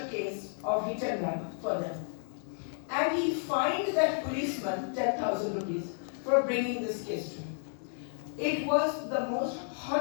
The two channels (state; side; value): silent; right; 56 dB below the other